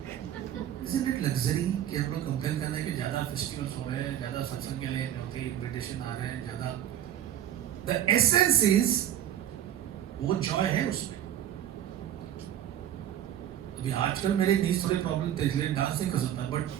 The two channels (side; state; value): left; quieter; 11.0 dB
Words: isn't it luxury कि हम लोग कंप्लेन करना है कि ज्यादा फेस्टिवल्स हो रहे हैं, ज्यादा सत्संग के लिए होते इनविटेशन आ रहे हैं ज्यादा। द एसेंस इज वो जॉय है उसमें। अभी आजकल मेरे नीज थोड़े प्रॉब्लम थे इसलिए डांस नहीं कर सकता, बट